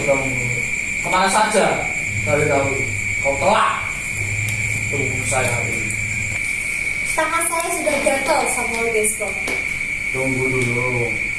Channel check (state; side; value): identical; both; correlation 1.00